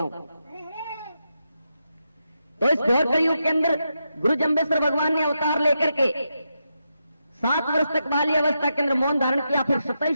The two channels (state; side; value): inverted; both; correlation -0.85